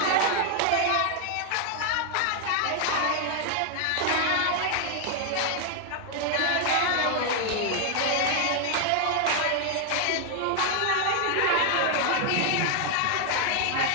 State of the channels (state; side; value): different; both; correlation 0.00